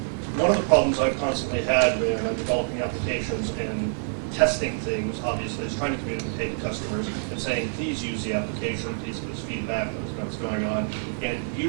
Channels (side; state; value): left; silent; 59 dB below the other